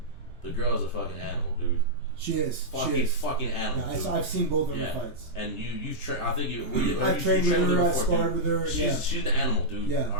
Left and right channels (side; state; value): right; noise; rumble, 18 dB below the sound